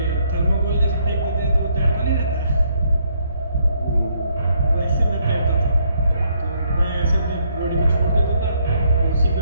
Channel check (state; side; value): inverted; both; correlation -0.71